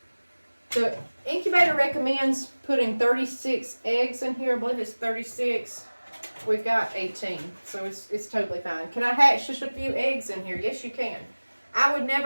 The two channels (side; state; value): both; inverted; correlation -1.00